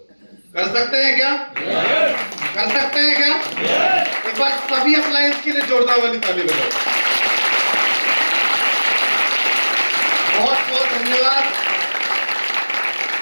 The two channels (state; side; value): inverted; both; correlation -1.00